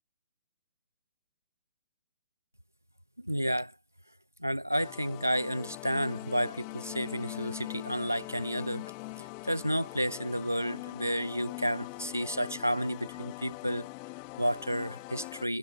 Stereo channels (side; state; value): both; inverted; correlation -0.88